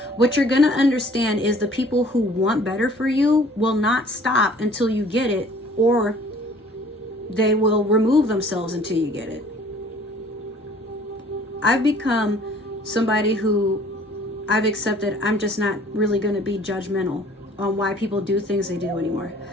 what you're going to understand is the people who want better for you will not stop until you get it, or they will remove themselves until you get it. I've become somebody who I've accepted I'm just not really going to be judgmental on why people do things they do anymore.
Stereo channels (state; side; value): normal; both; correlation 0.53